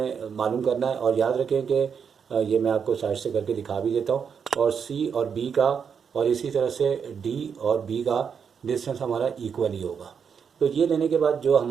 मालूम करना है। और याद रखें कि ये मैं आपको साइड से करके दिखा भी देता हूँ, और सी और बी का और इसी तरह से डी और बी का डिस्टेंस हमारा इक्वल ही होगा। तो ये लेने के बाद जो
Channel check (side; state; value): left; quieter; 6.8 dB